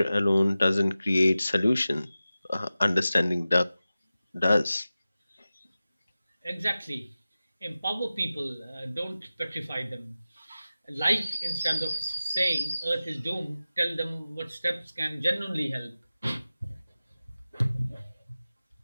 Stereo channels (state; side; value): inverted; both; correlation -0.95